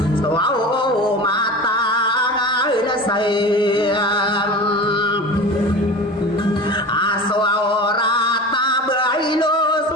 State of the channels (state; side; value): normal; both; correlation 0.33